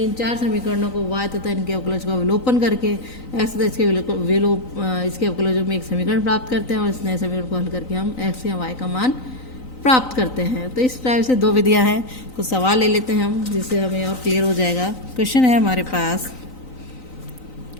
चार समीकरणों को y तथा इनके अवकलज का विलोपन करके x तथा इसके अवकलजों में एक समीकरण प्राप्त करते हैं और इस नए समीकरण को हल करके हम x या y का मान प्राप्त करते हैं। तो इस टाइप से दो विधियां हैं। कुछ सवाल ले लेते हैं हम, जिससे हमें और क्लियर हो जाएगा। क्वेश्चन है हमारे पास,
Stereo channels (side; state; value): right; late; 3.9 ms